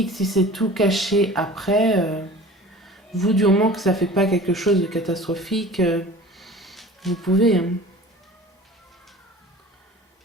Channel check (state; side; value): normal; both; correlation 0.41